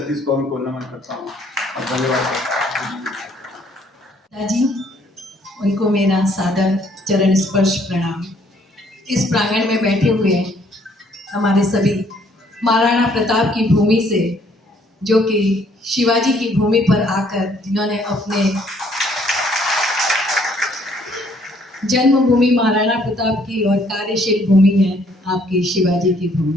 कौम को नमन करता हूँ और धन्यवाद करता हूँ। जी, उनको मेरा सादर चरण स्पर्श प्रणाम। इस प्रांगण में बैठे हुए हमारे सभी महाराणा प्रताप की भूमि से, जो कि शिवाजी की भूमि पर आकर जिन्होंने अपने जन्मभूमि महाराणा प्रताप की और कार्यशील भूमि है आपकी शिवाजी की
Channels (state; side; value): normal; both; correlation 0.64